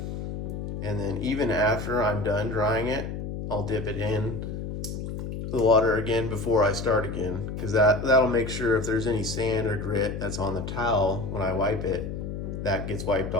And then even after I'm done drying it, I'll dip it in the water again before I start again, because that'll make sure if there's any sand or grit that's on the towel when I wipe it, that gets wiped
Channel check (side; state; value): left; noise; hum, 6 dB below the sound